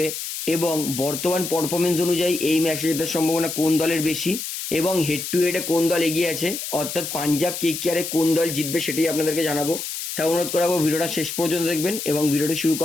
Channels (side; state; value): left; noise; hiss, 6 dB below the sound